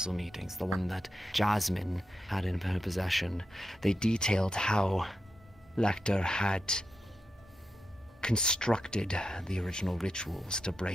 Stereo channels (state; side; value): normal; both; correlation 0.87